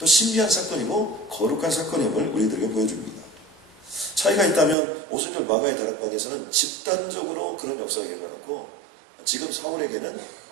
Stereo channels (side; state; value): left; drops out; at 4.8 s